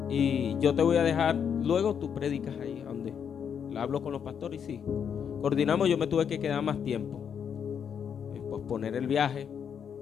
y yo te voy a dejar, luego tú predicas ahí, donde hablo con los pastores. Y sí, coordinamos. Yo me tuve que quedar más tiempo, posponer el viaje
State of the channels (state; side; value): quieter; right; 7.7 dB